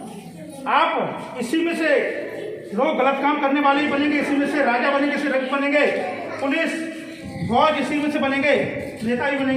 आप इसी में से लोग गलत काम करने वाले ही बनेंगे, इसी में से राजा बनेंगे, इसी रंग बनेंगे, पुलिस फौज इसी में से बनेंगे, नेता ही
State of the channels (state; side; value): identical; both; correlation 1.00